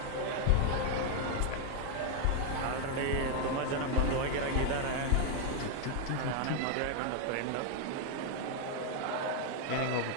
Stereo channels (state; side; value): different; both; correlation 0.00